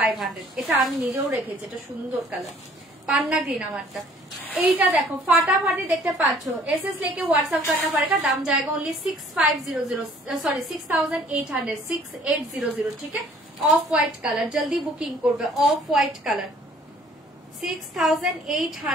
এটা আমি নিজেও রেখেছি, এটা সুন্দর কালার, পান্না গ্রিন আমারটা। এইটা দেখো ফাটাফাটি দেখতে পাচ্ছ, एसएस लेके व्हाट्सएप करना पड़ेगा, दाम जाएगा ओनली 6500, सॉरी 6800, 6800, ठीक है? ऑफ व्हाइट कलर, जल्दी बुकिंग করবে, অফ হোয়াইট কালার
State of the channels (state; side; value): normal; both; correlation 0.56